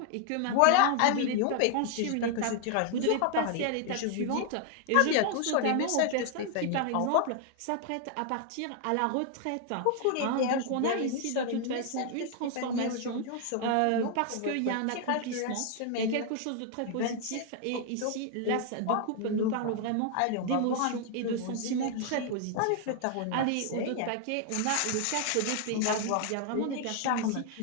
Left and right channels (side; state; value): both; different; correlation 0.00